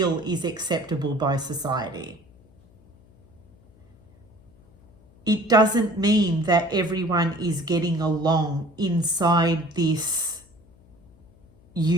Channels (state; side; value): noise; left; hum, 28 dB below the sound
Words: is acceptable by society. It doesn't mean that everyone is getting along inside this